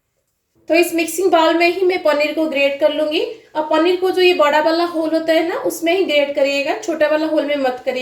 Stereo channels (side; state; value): both; identical; correlation 1.00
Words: तो इस मिक्सिंग बाउल में ही मैं पनीर को ग्रेट कर लूंगी। और पनीर को जो ये बड़ा वाला होल होता है ना, उसमें ही ग्रेट करिएगा, छोटा वाला होल में मत